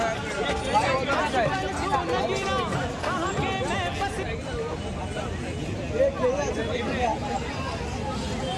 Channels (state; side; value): identical; both; correlation 1.00